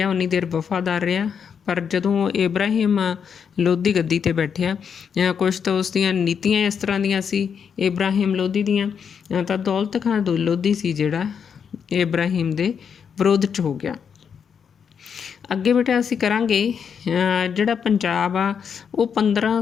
ਉਨੀ ਦੇਰ ਵਫਾਦਾਰ ਰਿਹਾ, ਪਰ ਜਦੋਂ ਇਬਰਾਹਿਮ ਲੋਧੀ ਗੱਦੀ 'ਤੇ ਬੈਠਿਆ ਕੁਛ ਤਾਂ ਉਸ ਦੀਆਂ ਨੀਤੀਆਂ ਇਸ ਤਰ੍ਹਾਂ ਦੀਆਂ ਸੀ ਇਬਰਾਹਿਮ ਲੋਧੀ ਦੀਆਂ, ਤਾਂ ਦੌਲਤ ਖਾਂ ਲੋਧੀ ਸੀ ਜਿਹੜਾ ਇਬਰਾਹਿਮ ਦੇ ਵਿਰੋਧ 'ਚ ਹੋ ਗਿਆ। ਅੱਗੇ ਬੇਟਾ ਅਸੀਂ ਕਰਾਂਗੇ ਜਿਹੜਾ ਪੰਜਾਬ ਆ ਉਹ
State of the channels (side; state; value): right; quieter; 7.0 dB